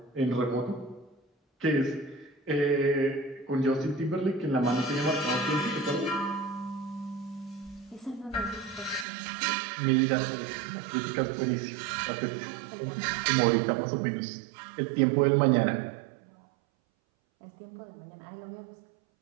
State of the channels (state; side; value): drops out; left; at 9.1 s